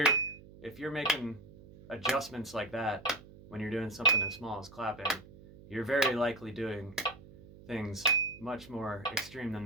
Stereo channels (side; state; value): right; noise; hum, 20 dB below the sound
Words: making adjustments like that when you're doing something as small as clapping, you're very likely doing things much more extreme than